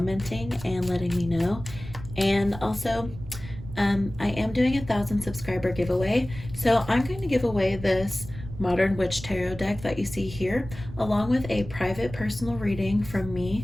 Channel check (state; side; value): noise; right; rumble, 13 dB below the sound